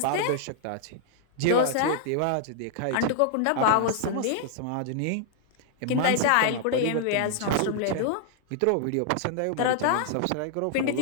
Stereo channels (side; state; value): both; different; correlation -0.01